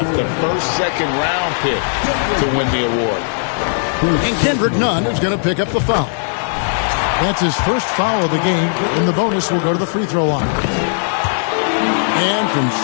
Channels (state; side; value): silent; right; 56 dB below the other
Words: the first second-round pick to win the award. And Kendrick Nunn is going to pick up the foul. That's his first foul of the game, and the bonus will go to the free throw line. And from